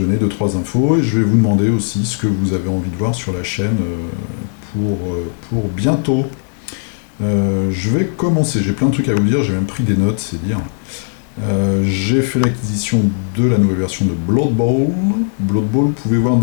2-3 infos et je vais vous demander aussi ce que vous avez envie de voir sur la chaîne pour bientôt. Je vais commencer, j'ai plein de trucs à vous dire, j'ai même pris des notes, c'est dire. J'ai fait l'acquisition de la nouvelle version de Blood Bowl. Blood Bowl, vous pouvez voir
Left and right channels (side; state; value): right; silent; digital silence